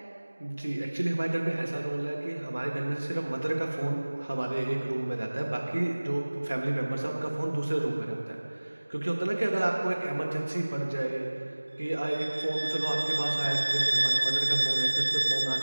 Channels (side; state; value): both; inverted; correlation -1.00